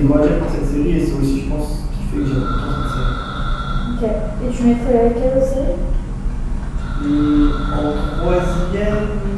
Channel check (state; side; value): identical; both; correlation 1.00